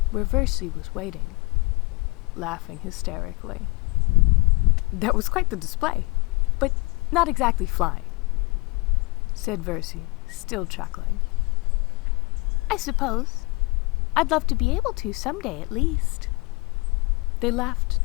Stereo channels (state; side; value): quieter; right; 26.4 dB